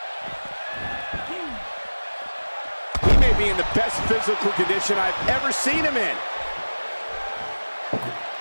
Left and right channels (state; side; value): inverted; both; correlation -1.00